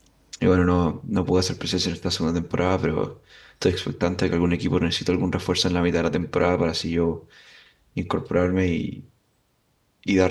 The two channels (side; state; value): both; identical; correlation 1.00